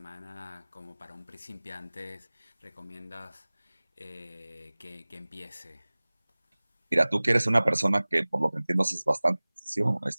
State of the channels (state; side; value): inverted; both; correlation -1.00